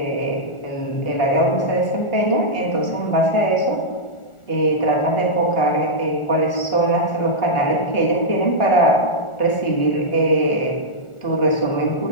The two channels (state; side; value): late; right; 1.4 ms